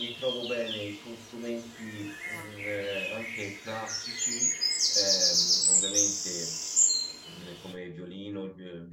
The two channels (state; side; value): identical; both; correlation 1.00